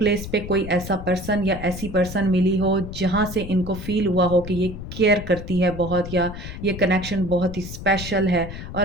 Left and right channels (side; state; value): left; noise; rumble, 9 dB below the sound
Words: पे कोई ऐसा पर्सन या ऐसी पर्सन मिली हो जहाँ से इनको फील हुआ हो कि ये केयर करती है बहुत या ये कनेक्शन बहुत ही स्पेशल है